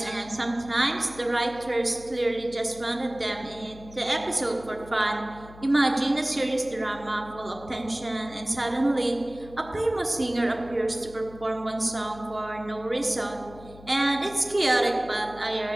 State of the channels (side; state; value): left; noise; hum, 19 dB below the sound